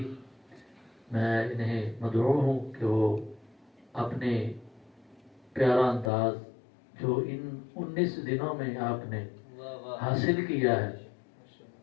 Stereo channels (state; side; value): drops out; right; at 6.1 s